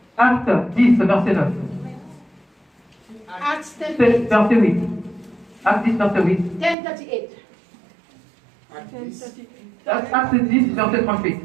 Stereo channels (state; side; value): drops out; left; at 6.8 s